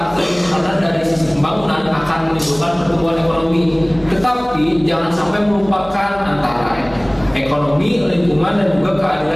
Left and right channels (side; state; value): left; noise; hum, 21 dB below the sound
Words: terjadi karena dari sisi pembangunan akan menimbulkan pertumbuhan ekonomi. Tetapi jangan sampai melupakan antara ekonomi, lingkungan dan juga